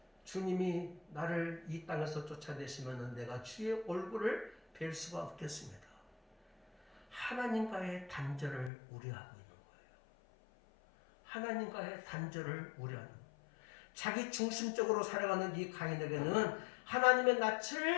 주님이 나를 이 땅에서 쫓아내시면 내가 주의 얼굴을 뵐 수가 없겠습니다. 하나님과의 단절을 우려하고 있는 거예요. 하나님과의 단절을 우려하는 거예요. 자기 중심적으로 살아가는 이 가인에게는 하나님의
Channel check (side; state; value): right; drops out; at 8.7 s